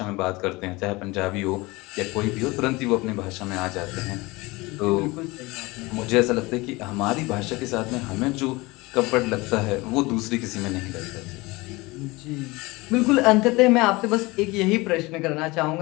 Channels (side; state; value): right; quieter; 22.7 dB